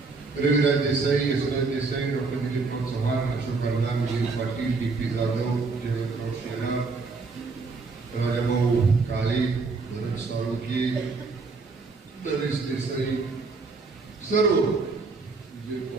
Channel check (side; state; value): left; quieter; 4.1 dB